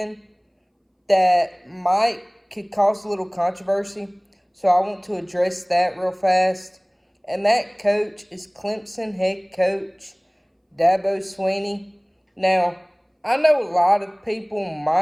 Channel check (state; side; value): identical; both; correlation 1.00